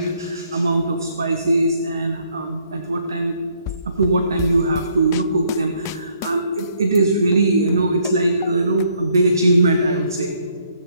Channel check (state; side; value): inverted; both; correlation -0.69